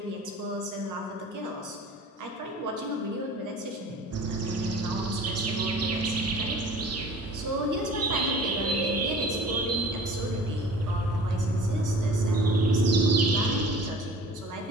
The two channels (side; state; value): both; normal; correlation 0.45